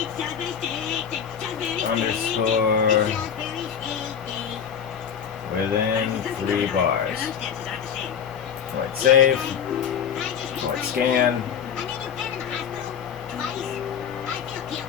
underscore within 3 bars. Alright, save. Alright, scan.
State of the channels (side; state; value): right; quieter; 7.8 dB